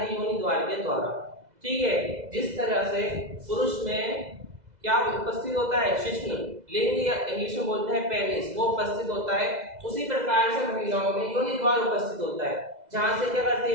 योनि द्वार के द्वारा। ठीक है, जिस तरह से पुरुष में क्या उपस्थित होता है, शिश्न लिंग या इंग्लिश में बोलते हैं पेनिस, वो उपस्थित होता है, उसी प्रकार से महिलाओं में योनि द्वार उपस्थित होता है, जहां से क्या करती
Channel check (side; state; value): left; late; 2.0 ms